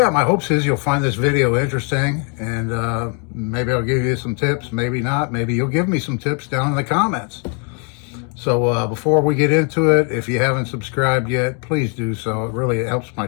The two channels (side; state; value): right; quieter; 38.5 dB